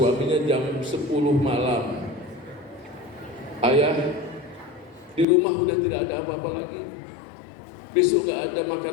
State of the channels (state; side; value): drops out; right; at 5.2 s